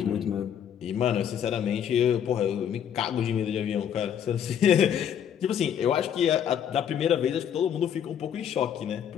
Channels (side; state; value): right; quieter; 9.0 dB